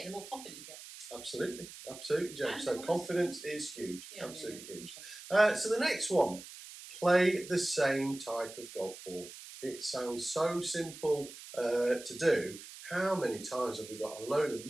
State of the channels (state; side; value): noise; right; hiss, 14 dB below the sound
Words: it, the more confident you get. Absolutely, Joe. So confidence is huge, absolutely huge. So the next one, play the same type of golf ball. It sounds so simple to do. How many times have we got a load of